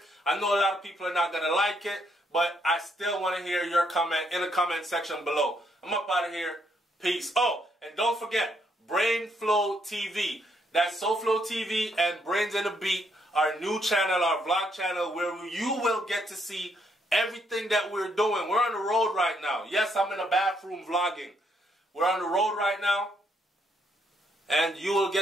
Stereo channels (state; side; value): normal; both; correlation 0.74